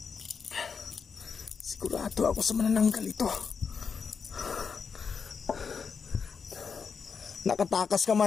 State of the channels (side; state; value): right; quieter; 5.9 dB